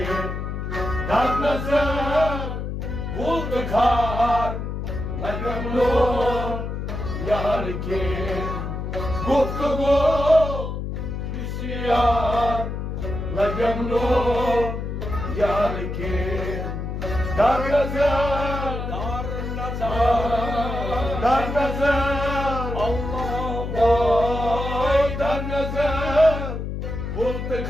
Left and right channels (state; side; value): noise; left; hum, 5 dB below the sound